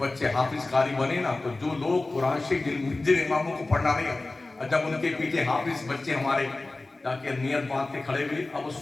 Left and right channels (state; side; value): quieter; right; 3.1 dB